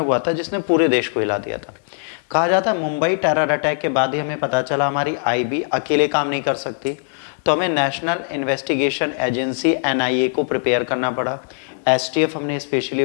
था जिसने पूरे देश को हिला दिया था। कहा जाता है मुंबई टेरर अटैक के बाद ही हमें पता चला हमारी आईबी अकेले काम नहीं कर सकती, तो हमें नेशनल इन्वेस्टिगेशन एजेंसी एनआईए को प्रिपेयर करना पड़ा। एसटीएफ हमने स्पेशली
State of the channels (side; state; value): right; silent; 65 dB below the other